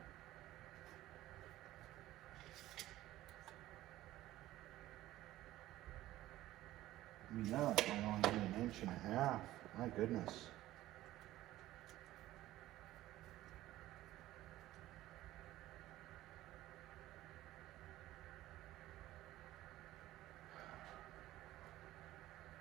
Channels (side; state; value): left; quieter; 15.4 dB